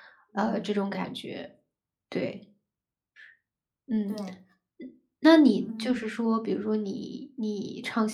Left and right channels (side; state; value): both; identical; correlation 1.00